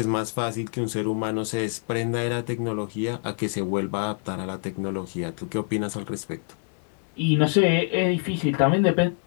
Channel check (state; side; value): silent; right; 61 dB below the other